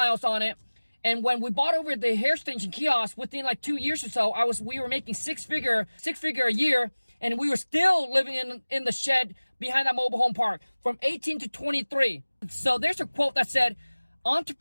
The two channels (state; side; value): inverted; both; correlation -1.00